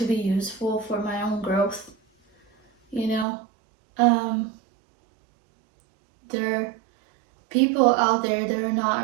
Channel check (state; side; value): drops out; left; at 3.2 s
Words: be useful for my own growth. There are people out there that are